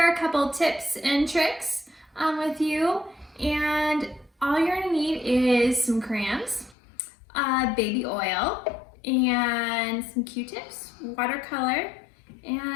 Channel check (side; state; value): right; drops out; at 6.8 s